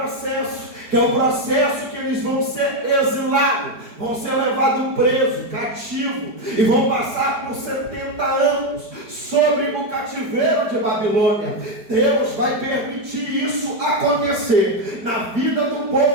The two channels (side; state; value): left; late; 4.8 ms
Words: que é o processo que eles vão ser exilados, vão ser levados presos, cativos, e vão passar por 70 anos sobre o cativeiro de Babilônia. Deus vai permitir isso acontecer na vida do